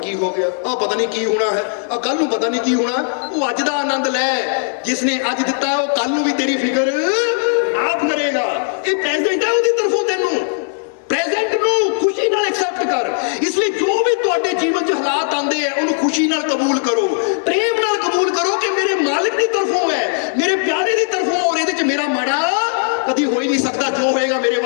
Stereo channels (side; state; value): right; silent; digital silence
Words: हो गया, पता नहीं की होना है, कल नूं पता नहीं की होना। वो अज दा आनंद लै, जिसने अज दिता है वो कल नूं भी तेरी फिक्र आप करेगा। ये प्रेजेंट है उसकी तरफों, तेनू प्रेजेंट नूं खुशी नाल एक्सेप्ट कर। इसलिए जो भी तुहाडे जीवन च हालात आंदे हैं उन्होंने खुशी नाल कबूल करो, प्रेम नाल कबूल करो कि मेरे मालिक की तरफों है, मेरे प्यारे की तरफों, और इहदे च मेरा माड़ा कभी हो ही नहीं सकता, जो होएगा मेरे